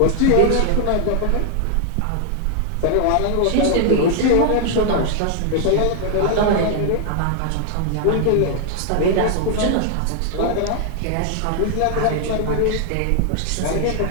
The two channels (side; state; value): both; different; correlation 0.00